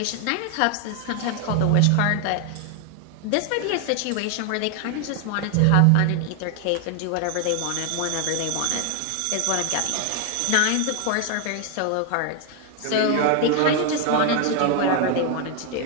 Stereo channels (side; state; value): both; different; correlation 0.01